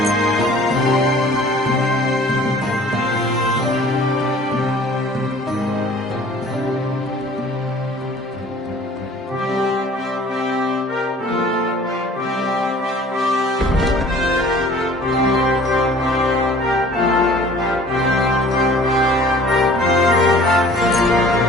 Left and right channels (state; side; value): normal; both; correlation 0.50